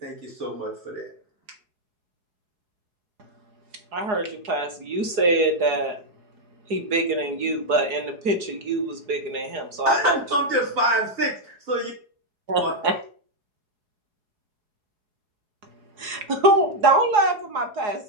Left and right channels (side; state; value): left; late; 4.8 ms